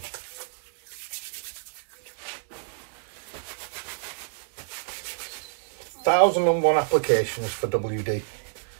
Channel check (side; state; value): left; silent; digital silence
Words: Thousand and one applications for WD.